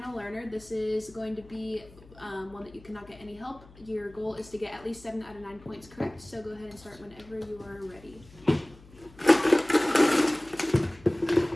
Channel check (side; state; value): left; noise; hum, 23 dB below the sound